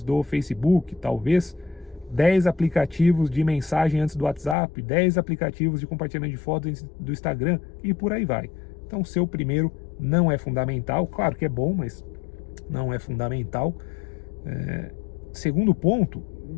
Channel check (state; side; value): drops out; right; at 4.5 s